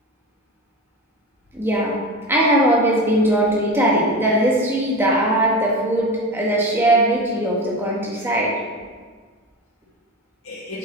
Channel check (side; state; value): both; normal; correlation 0.27